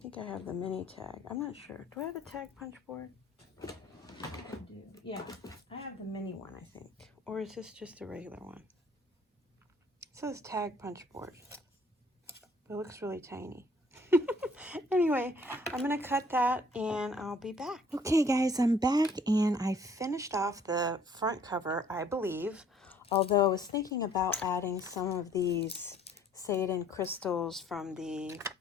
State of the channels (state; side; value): normal; both; correlation 0.59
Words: I have the mini tag. I'm not sure. Do I have the tag punch board? I do. Yeah, I have the mini one, I think. Or is this just a regular one? It says tag punch board. But it looks really tiny. Anyway, I'm going to cut that and I'll be back. Okay, guys, I'm back and I finished off the front cover, I believe. Although I was thinking about adding some of these Seiden crystals from the